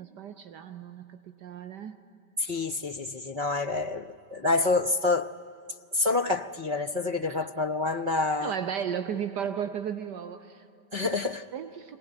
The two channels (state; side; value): late; left; 5.1 ms